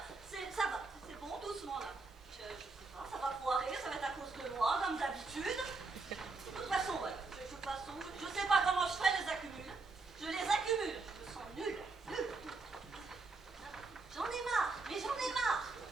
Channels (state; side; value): quieter; left; 3.8 dB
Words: Ça va, c'est bon, doucement là. Je sais pas, ça va foirer, ça va être à cause de moi, comme d'habitude. De toute façon, ouais, je sais pas comment je fais, les accumule. Je les accumule, je me sens nulle. J'en ai marre, mais j'en ai marre.